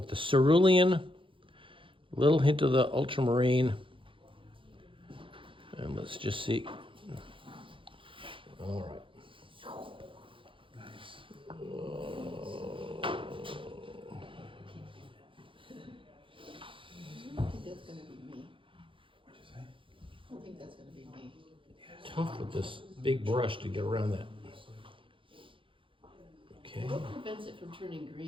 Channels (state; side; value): late; left; 0.25 ms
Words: the cerulean, little hint of the ultramarine. And let's just see. All right. Nice. I don't think that's gonna be me. What'd you say? I don't think that's gonna be me. Tough with this big brush to get around that. Okay, What prevents it from turning